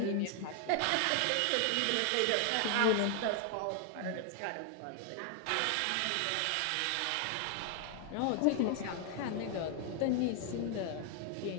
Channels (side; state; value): both; different; correlation 0.00